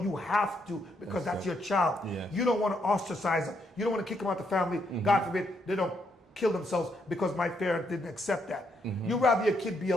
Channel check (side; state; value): both; normal; correlation 0.76